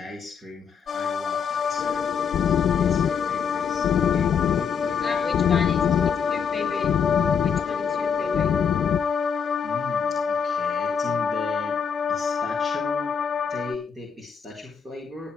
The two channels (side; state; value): right; quieter; 6.8 dB